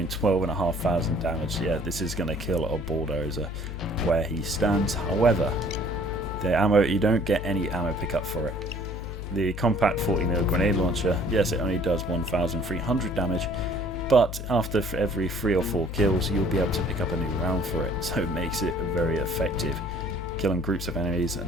12,500 damage. Yeah, this is going to kill a bulldozer where he stands. However, the ammo, you don't get any ammo pickup for it. The compact 40mm grenade launcher, yes, it only does 1,300 damage, but after every 3 or 4 kills, you'll be able to pick up a new round for it, so it makes it very effective. Killing groups of enemies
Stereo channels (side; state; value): left; noise; hum, 7 dB below the sound